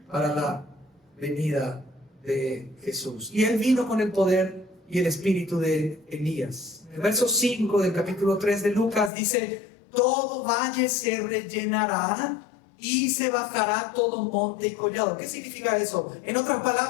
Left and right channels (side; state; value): right; drops out; at 9.1 s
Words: para la venida de Jesús. Y él vino con el poder y el espíritu de Elías. El verso 5 del capítulo 3 de Lucas dice: todo valle se rellenará y se bajará todo monte y collado. ¿Qué significa eso? En otras